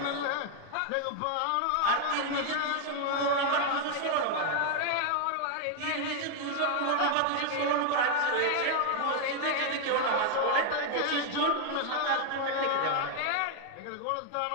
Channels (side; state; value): both; different; correlation 0.00